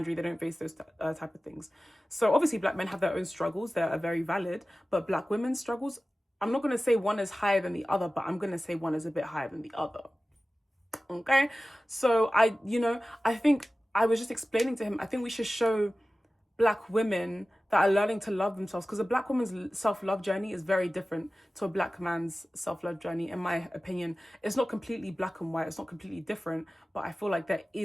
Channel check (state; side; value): normal; both; correlation 0.96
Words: they don't face those type of things. So obviously black men have their own struggles. They are very valid. But black women's struggles, I'm not going to say one is higher than the other, but I'm going to say one is a bit higher than the other. Okay? So I think I was just explaining to him, I think we should show black women that are learning to love themselves, because a black woman's self-love journey is very different to a black man's self-love journey. In my opinion, it's not completely black and white, it's not completely different, but I feel like there